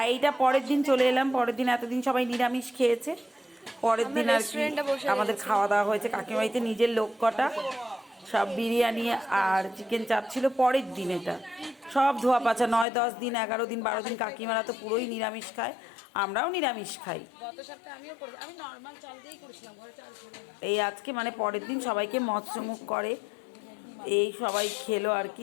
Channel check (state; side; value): drops out; right; at 12.9 s